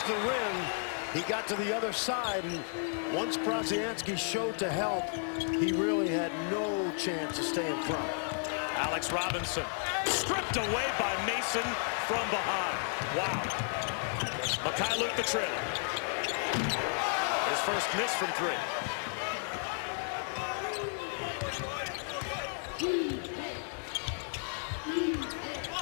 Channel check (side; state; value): right; silent; 56 dB below the other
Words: the rim. He got to the other side, and once Brodzianski showed to help, he really had no chance to stay in front. Alex Robinson stripped away by Mason from behind. Wow. Mikhailuk the trailer. His first miss from three.